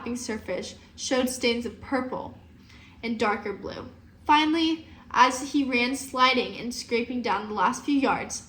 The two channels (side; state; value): both; identical; correlation 1.00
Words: surface showed stains of purple and darker blue. Finally, as he ran sliding and scraping down the last few yards,